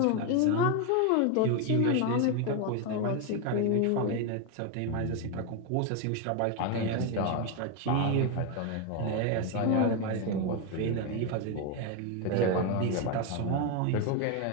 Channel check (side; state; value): both; different; correlation 0.02